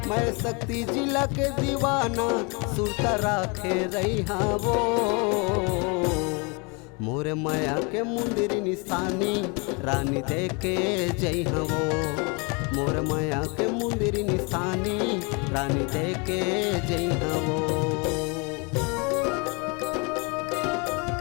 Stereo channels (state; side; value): quieter; right; 31.5 dB